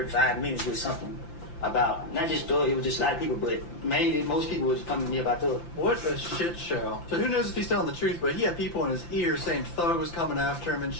5 minutes with something. about not just Thug, it was just a lot of people, but mainly most people was coming to me about Thug. What a shit show. So who knows if he's telling the truth, but he had people in his ear saying Thug was coming after him and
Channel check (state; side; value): late; right; 5.8 ms